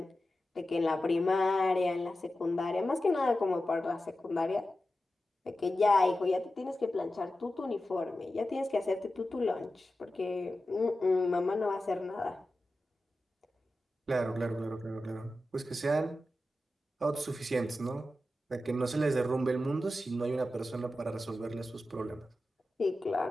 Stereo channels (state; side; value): normal; both; correlation 0.92